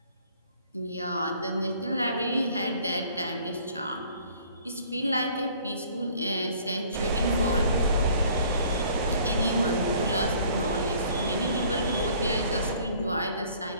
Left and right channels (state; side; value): inverted; both; correlation -0.55